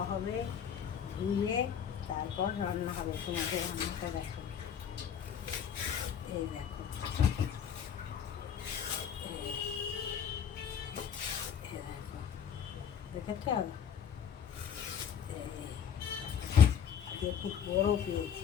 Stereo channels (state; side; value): quieter; right; 8.1 dB